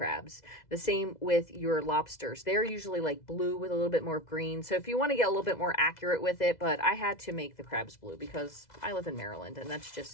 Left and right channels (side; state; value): right; late; 2.0 ms